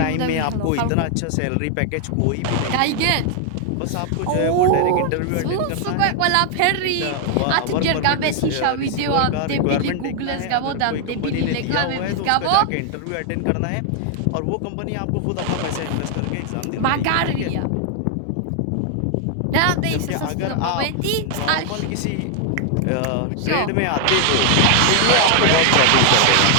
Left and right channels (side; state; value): both; different; correlation 0.00